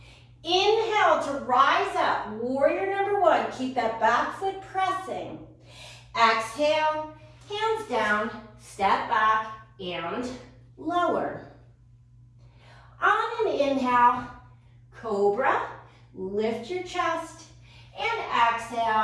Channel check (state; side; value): identical; both; correlation 1.00